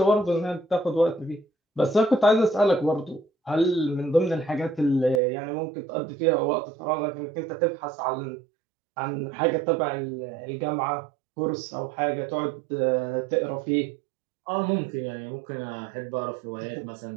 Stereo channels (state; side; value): drops out; left; at 5.2 s